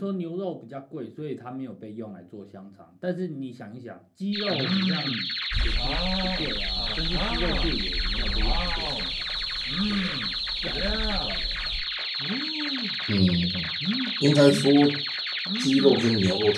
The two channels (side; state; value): both; identical; correlation 1.00